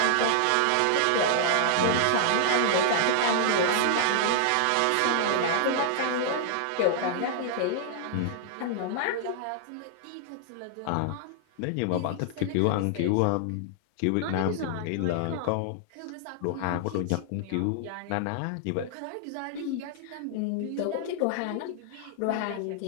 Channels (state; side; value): different; both; correlation -0.01